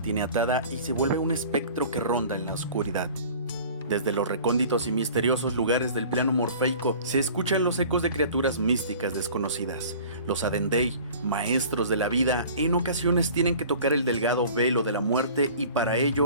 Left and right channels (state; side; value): inverted; both; correlation -0.45